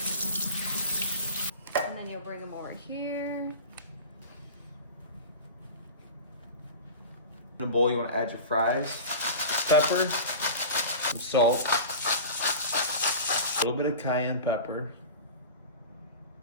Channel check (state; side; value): inverted; both; correlation -0.33